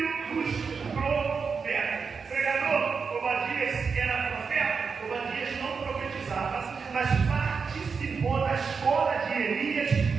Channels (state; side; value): quieter; left; 5.4 dB